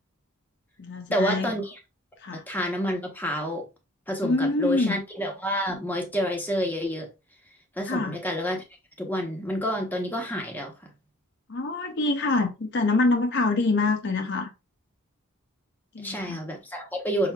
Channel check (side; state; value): both; normal; correlation 0.52